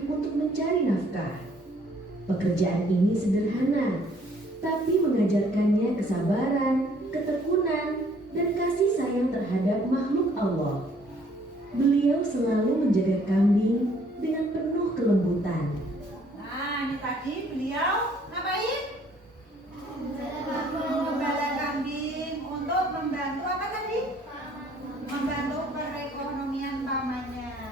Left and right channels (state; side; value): normal; both; correlation 0.61